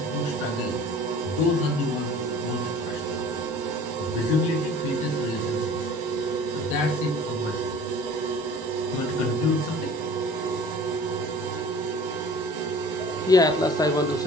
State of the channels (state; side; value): normal; both; correlation 0.46